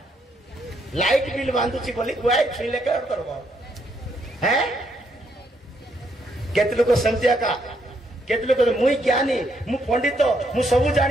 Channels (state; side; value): normal; both; correlation 0.74